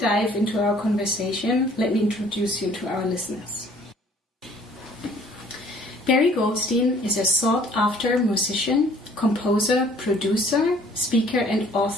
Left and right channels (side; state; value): both; normal; correlation 0.57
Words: into our conversation, let me introduce you to our listeners. Barry Goldstein is a sought-after musician, composer, producer, speaker, and